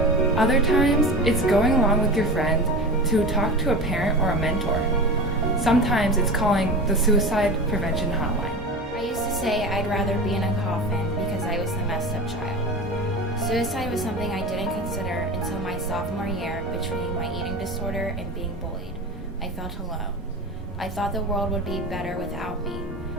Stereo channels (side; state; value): both; normal; correlation 0.29